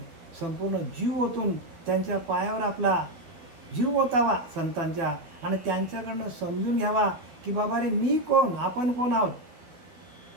संपूर्ण जीव ओतून त्यांच्या पायावर आपला जीव ओतावा संतांच्या, आणि त्यांच्याकडनं समजून घ्यावा की बाबा रे मी कोण, आपण कोण आहोत,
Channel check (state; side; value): late; left; 12 ms